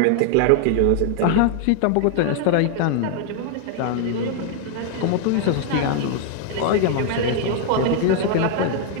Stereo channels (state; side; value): different; both; correlation 0.00